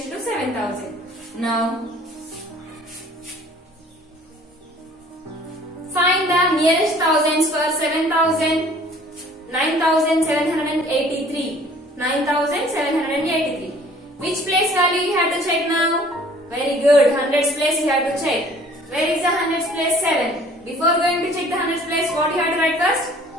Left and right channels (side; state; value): both; normal; correlation 0.53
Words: to 7000. Now find the nearest thousands for 9783. 9783. Which place value you have to check now? Very good. Hundreds place you have to check. Where is the hundreds place? 7. Before going to check the hundreds place, what you have to write first?